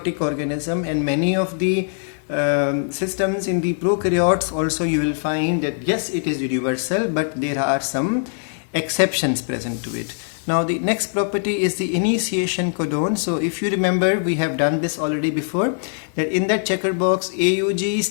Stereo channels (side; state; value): right; silent; digital silence